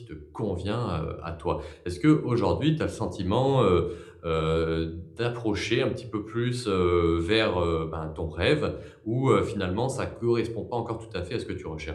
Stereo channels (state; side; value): identical; both; correlation 1.00